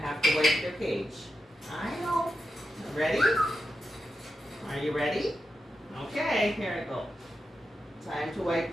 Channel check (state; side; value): normal; both; correlation 0.88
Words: have to wipe your cage. I know. Ready? Are you ready? Okay, here I go. Time to wipe